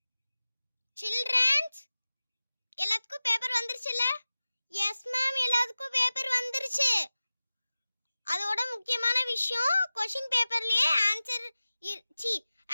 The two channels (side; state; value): both; inverted; correlation -0.97